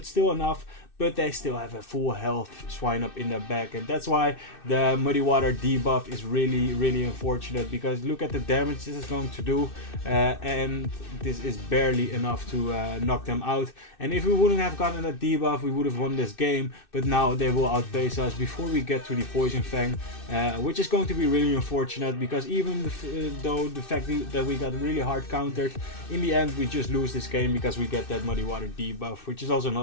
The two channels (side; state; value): right; late; 2.6 ms